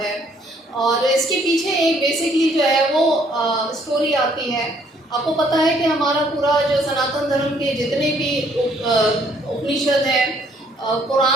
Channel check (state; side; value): normal; both; correlation 0.65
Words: और इसके पीछे एक बेसिकली जो है वो स्टोरी आती है। आपको पता है कि हमारा पूरा जो सनातन धर्म के जितने भी उपनिषद हैं,